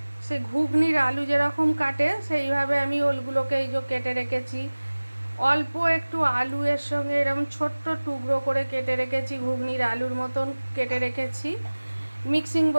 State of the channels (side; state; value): both; inverted; correlation -1.00